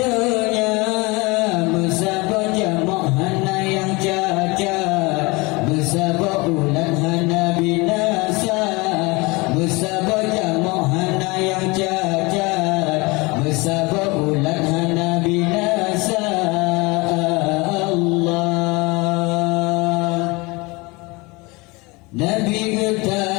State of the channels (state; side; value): quieter; right; 25.4 dB